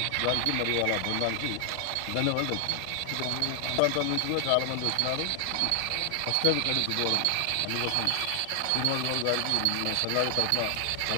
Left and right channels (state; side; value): different; both; correlation 0.00